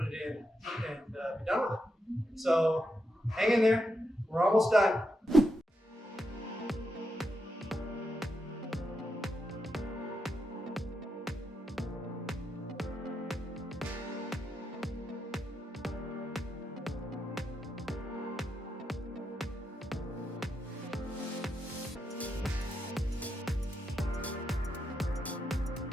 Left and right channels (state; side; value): normal; both; correlation 0.84